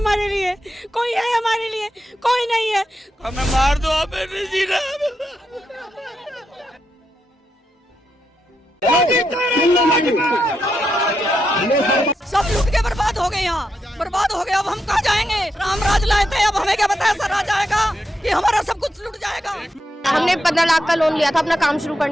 लिए? कोई है हमारे लिए? कोई नहीं है। हमें मार दो, हमें नहीं जीना। सब लूट के बर्बाद हो गए, यहाँ बर्बाद हो गया। अब हम कहाँ जाएंगे? राम राज लाए थे, अब हमें क्या पता ऐसा राज आएगा कि हमारा सब कुछ लूट जाएगा। हमने 15 लाख का लोन लिया था अपना काम शुरू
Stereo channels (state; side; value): normal; both; correlation 0.84